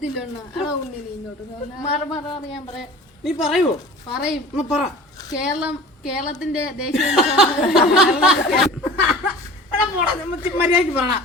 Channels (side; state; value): both; normal; correlation 0.40